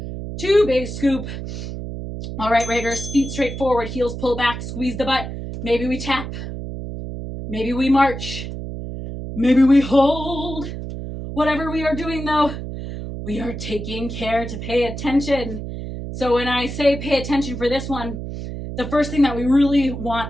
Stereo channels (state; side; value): noise; right; hum, 7 dB below the sound